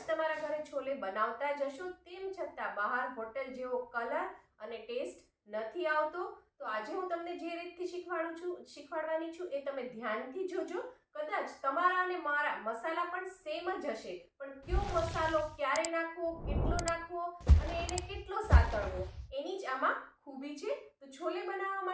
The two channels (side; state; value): both; identical; correlation 1.00